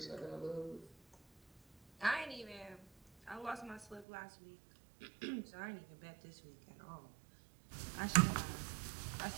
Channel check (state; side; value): drops out; left; at 4.0 s